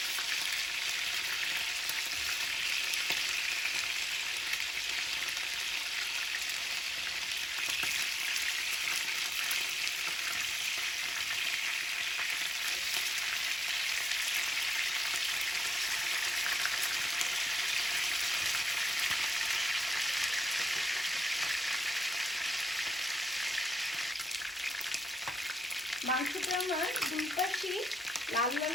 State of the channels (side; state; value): both; normal; correlation 0.82